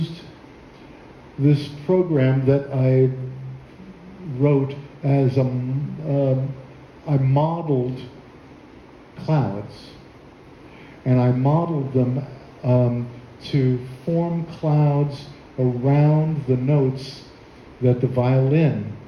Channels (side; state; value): both; identical; correlation 1.00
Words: this program that I wrote as I modeled clouds. And I modeled them to form clouds around the notes that the violin